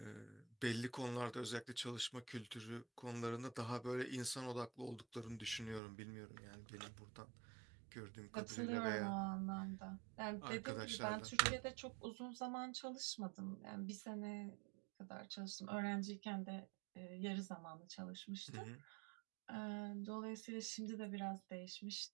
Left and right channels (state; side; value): drops out; left; at 5.8 s